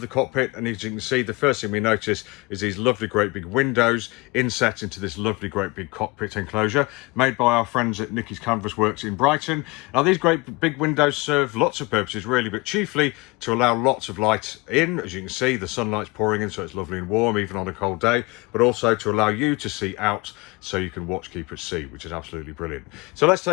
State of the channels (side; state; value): right; quieter; 24.7 dB